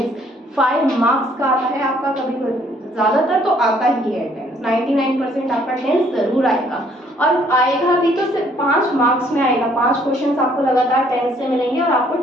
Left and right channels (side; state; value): both; normal; correlation 0.63